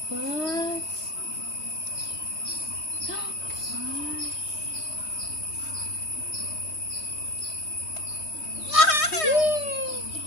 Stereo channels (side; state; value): right; late; 3.2 ms